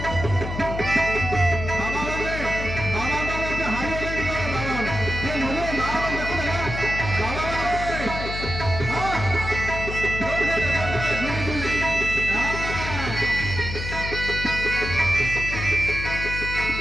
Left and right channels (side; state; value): left; noise; hum, 6 dB below the sound